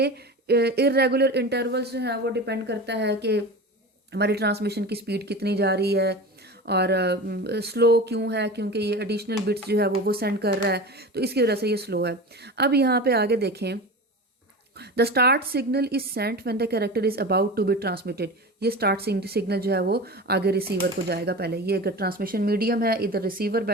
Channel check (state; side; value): normal; both; correlation 0.30